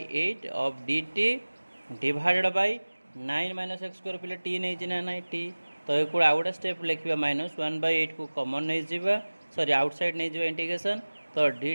of dt divided by 9 minus x square पहले टी नहीं ना ना टी तो ये आउ गोटे स्टेप लिखा माइनस 1/8 को कॉमन नहीं जावा सॉरी आउटसाइड नहीं जावा इंटीग्रेशन तो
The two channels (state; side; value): inverted; both; correlation -1.00